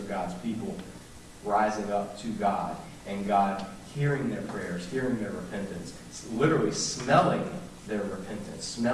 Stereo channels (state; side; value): identical; both; correlation 1.00